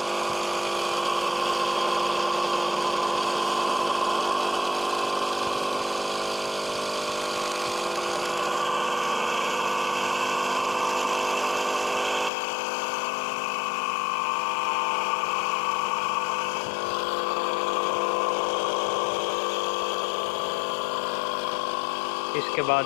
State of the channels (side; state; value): right; drops out; at 12.3 s